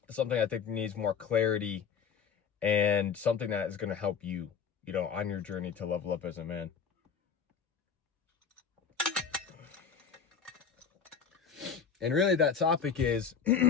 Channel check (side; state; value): right; quieter; 6.4 dB